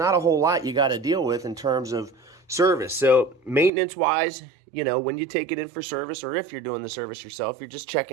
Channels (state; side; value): drops out; left; at 3.7 s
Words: a whole lot you got to deal with in terms of service. So maintenance-wise, you know, when you take it in for service, or if you're doing the service yourself, you're just